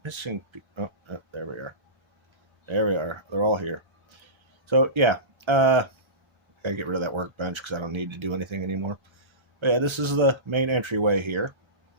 missing people. Oh, there we are. There we are. They're all here. So, yeah. I gotta get rid of that workbench because I don't need to do anything anymore. But yeah, this is the main entryway here.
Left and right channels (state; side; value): late; left; 1.3 ms